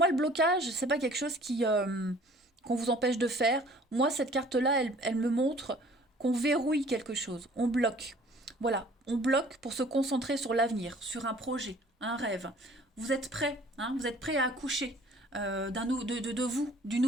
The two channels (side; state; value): both; normal; correlation 0.52